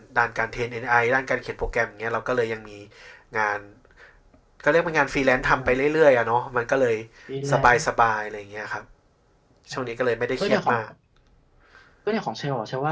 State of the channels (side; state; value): both; identical; correlation 1.00